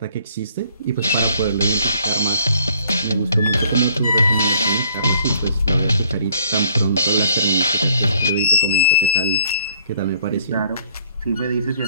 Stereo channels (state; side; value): inverted; both; correlation -0.61